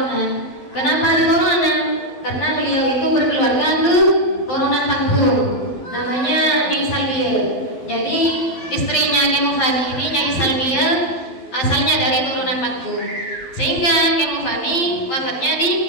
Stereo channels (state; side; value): late; right; 11 ms